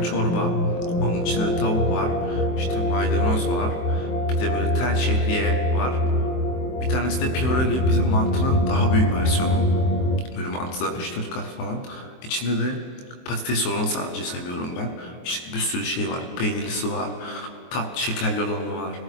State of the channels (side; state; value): right; late; 23 ms